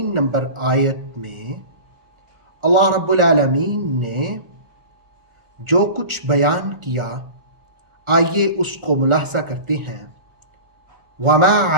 نمبر آیت میں اللہ رب العالمین نے جو کچھ بیان کیا، آئیے اس کو ملاحظہ کرتے ہیں۔ وما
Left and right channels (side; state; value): left; late; 1.4 ms